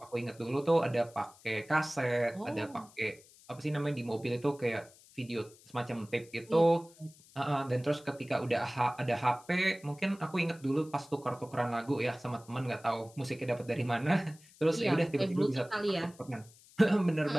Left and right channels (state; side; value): noise; left; hiss, 25 dB below the sound